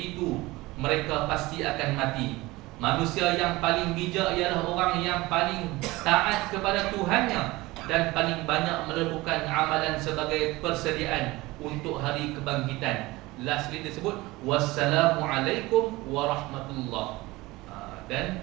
mereka pasti akan mati. Manusia yang paling bijak ialah orang yang paling taat kepada Tuhannya dan paling banyak melakukan amalan sebagai persediaan untuk hari kebangkitan. Lastly disebut wassalamualaikum warahmatullah.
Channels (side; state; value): left; quieter; 20.5 dB